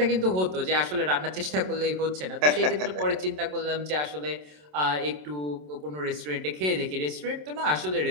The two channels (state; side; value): late; left; 27 ms